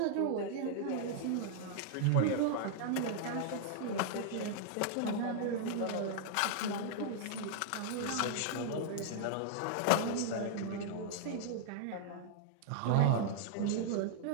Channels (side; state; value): both; different; correlation -0.01